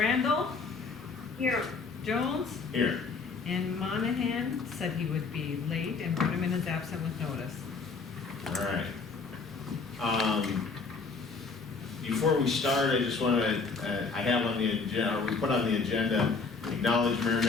Here. Jones. Here. And Monahan said he would be late and put him in as absent with notice. All right. Before we start, I just want to, I have on the agenda, or we put on the agenda, acknowledge Mayor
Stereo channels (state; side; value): quieter; right; 4.5 dB